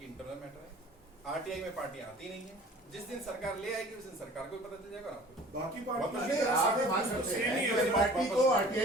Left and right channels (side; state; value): both; normal; correlation 0.46